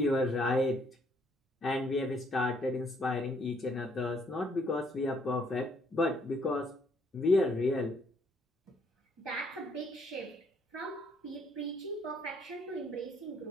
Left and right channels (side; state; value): both; normal; correlation 0.67